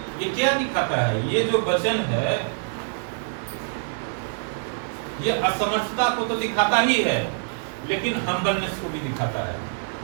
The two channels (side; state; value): left; silent; digital silence